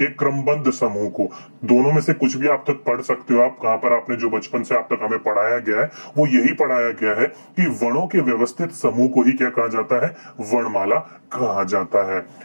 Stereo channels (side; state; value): both; inverted; correlation -1.00